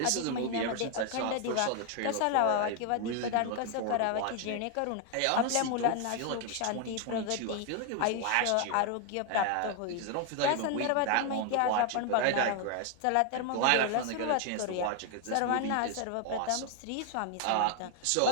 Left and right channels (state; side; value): different; both; correlation 0.00